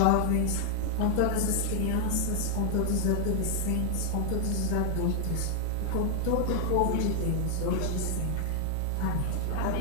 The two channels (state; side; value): different; both; correlation 0.00